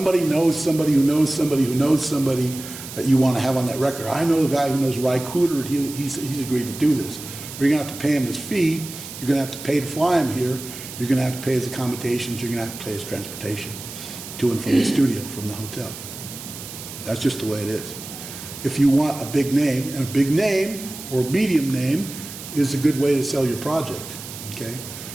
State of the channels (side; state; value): right; noise; hiss, 12 dB below the sound